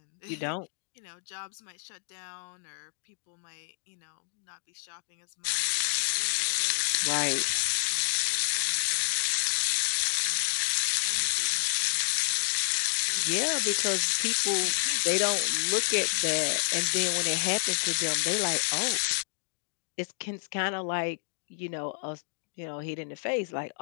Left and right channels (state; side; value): silent; right; digital silence